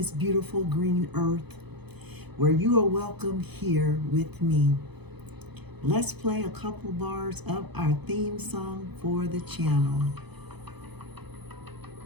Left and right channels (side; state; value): left; late; 0.98 ms